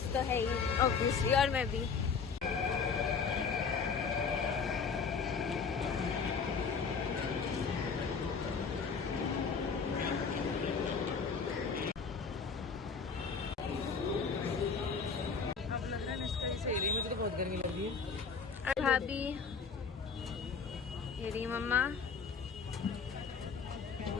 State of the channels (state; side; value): quieter; right; 5.5 dB